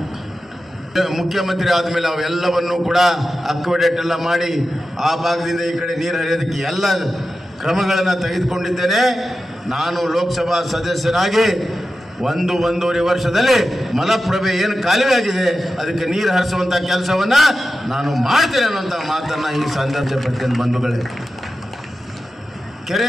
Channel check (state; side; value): normal; both; correlation 0.92